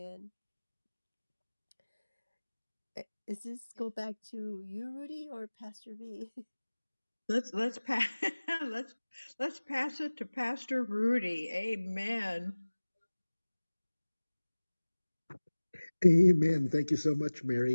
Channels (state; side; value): inverted; both; correlation -1.00